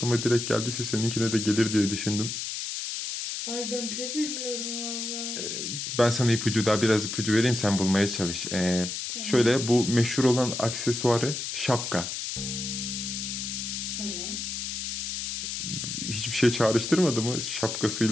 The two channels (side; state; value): left; noise; hiss, 4 dB below the sound